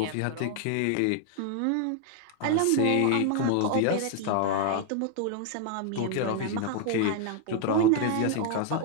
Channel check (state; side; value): different; both; correlation 0.00